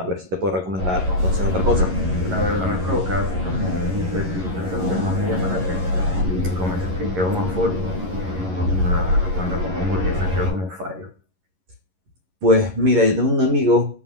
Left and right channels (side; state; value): left; late; 11 ms